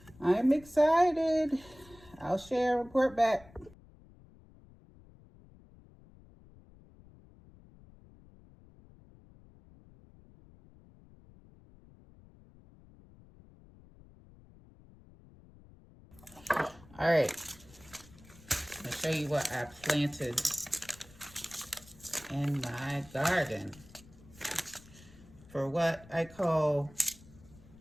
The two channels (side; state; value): left; noise; rumble, 23 dB below the sound